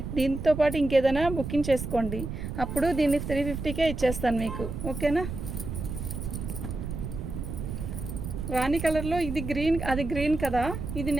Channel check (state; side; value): noise; right; rumble, 6 dB below the sound